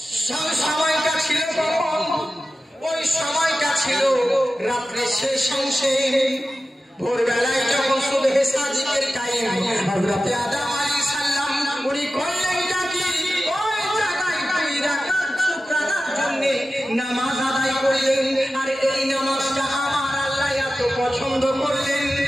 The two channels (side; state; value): both; normal; correlation 0.94